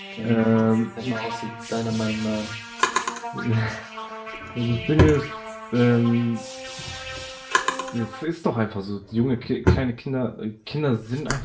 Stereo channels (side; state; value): both; identical; correlation 1.00